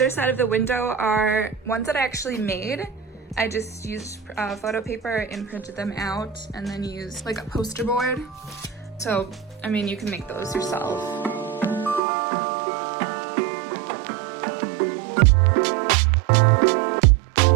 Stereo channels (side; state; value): left; drops out; at 12.0 s